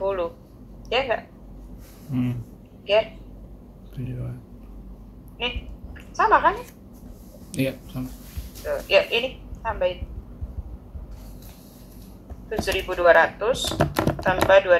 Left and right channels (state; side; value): identical; both; correlation 1.00